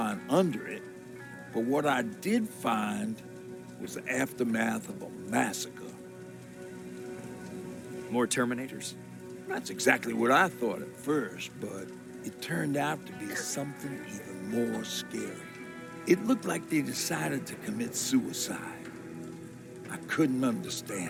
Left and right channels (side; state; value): both; identical; correlation 1.00